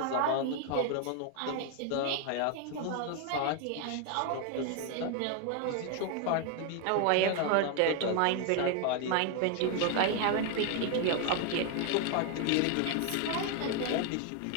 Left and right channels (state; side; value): different; both; correlation 0.01